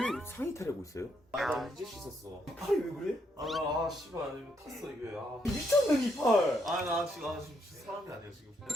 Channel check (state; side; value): normal; both; correlation 0.75